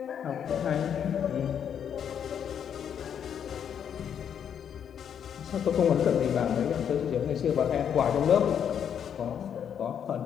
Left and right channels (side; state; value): right; quieter; 8.5 dB